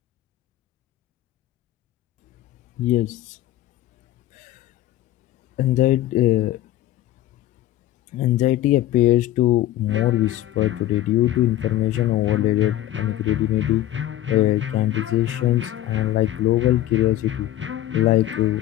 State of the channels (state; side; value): quieter; right; 13.9 dB